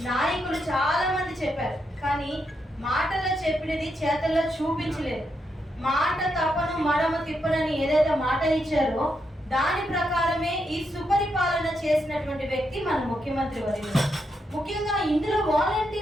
నాయకులు చాలా మంది చెప్పారు, కానీ మాటల్లో చెప్పినది చేతల్లో చూపించలేదు. మాట తప్పను మడమ తిప్పనని ఏదైతే మాట ఇచ్చారో దాని ప్రకారమే ఈ సుపరిపాలన చేసినటువంటి వ్యక్తి మన ముఖ్యమంత్రి వర్యులు. ముఖ్యంగా ఇందులో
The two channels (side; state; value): both; normal; correlation 0.81